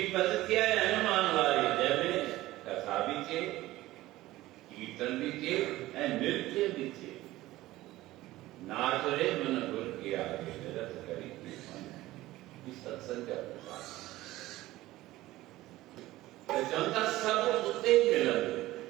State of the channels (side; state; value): left; quieter; 17.0 dB